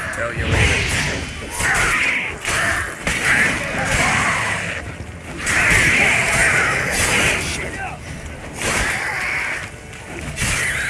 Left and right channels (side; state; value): both; identical; correlation 1.00